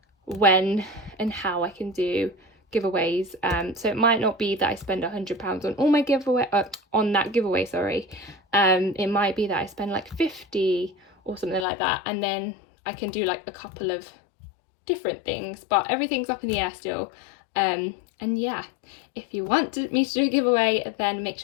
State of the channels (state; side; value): drops out; right; at 11.7 s